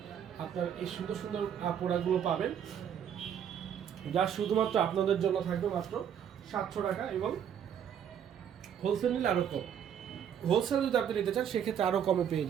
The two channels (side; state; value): left; quieter; 8.8 dB